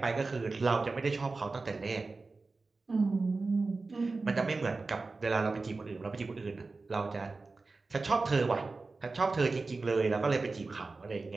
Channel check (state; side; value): quieter; left; 3.8 dB